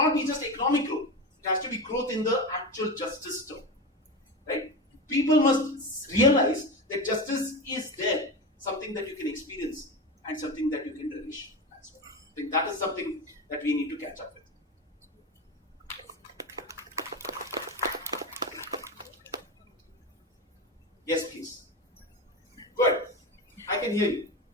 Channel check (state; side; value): normal; both; correlation 0.22